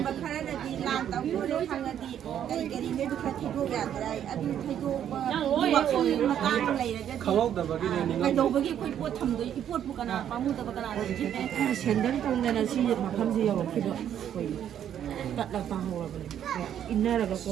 ꯈꯔꯅꯗꯤ ꯂꯥꯟ ꯇꯧꯈꯤꯕ ꯈꯪꯉꯗꯤ ꯀꯔꯤ ꯀꯔꯤ ꯅꯣꯏꯗꯨ ꯈꯔ ꯊꯩꯗꯣꯛ ꯌꯥꯗ꯭ꯔꯥ ꯑꯗꯨ ꯊꯩꯗꯣꯛꯄꯒꯤ ꯋꯥꯈꯜ ꯃꯇꯥꯡ ꯂꯩꯔꯒꯗꯤ ꯀꯩꯗꯧꯕꯒꯤ ꯑꯩꯈꯣꯏ ꯄꯣꯠ ꯊꯝꯗꯣꯏ ꯄꯣꯠꯄꯨ ꯀꯅꯥ ꯄꯥꯝꯃꯨꯗꯕ ꯀꯅꯥꯅ ꯅꯤꯡꯁꯤꯡꯗꯣꯏꯅꯣ Sendal tongdana si makamsi yawakkiba. Tatla pahawabani. Innaraga ko.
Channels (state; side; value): quieter; left; 9.9 dB